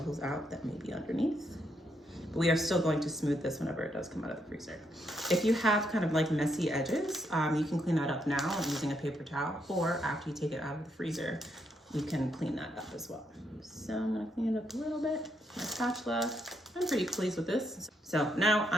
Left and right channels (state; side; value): normal; both; correlation 0.78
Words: out that may be underneath. But we are still going to smooth this whenever it does come out of the freezer. If you have kind of like messy edges, you can clean that up now using a paper towel, or after you take it out of the freezer, you can clean that up as well. So I'm gonna clean it up a little bit. My spatula, I'm pretty pleased with this. So now